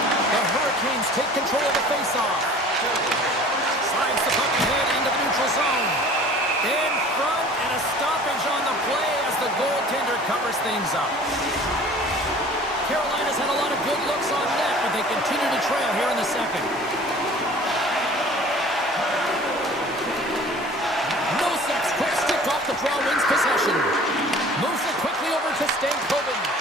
The Hurricanes take control of the faceoff. Slides the puck ahead into the neutral zone. In front, and a stoppage on the play as the goaltender covers things up. Carolina's had a lot of good looks on net, but they continue to trail here in the second. Nosak's quick stick off the draw wins possession. Moves it quickly over to Stankoven.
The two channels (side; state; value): both; normal; correlation 0.46